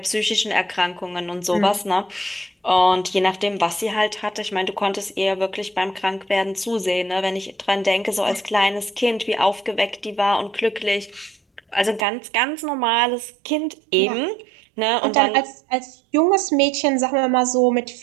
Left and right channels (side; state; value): left; drops out; at 12.1 s